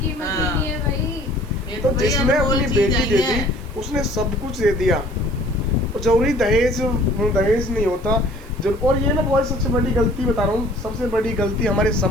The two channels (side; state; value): right; noise; hiss, 27 dB below the sound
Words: ही हाँ। नहीं है भाई। ये तो भैया जिसने अनमोल अपनी चीज बेटी आई दे है। दी उसने सब कुछ दे दिया, और जरूरी दहेज नहीं होता और ये मैं बहुत सबसे बड़ी गलती बता रहा हूँ, सबसे बड़ी गलती हमारे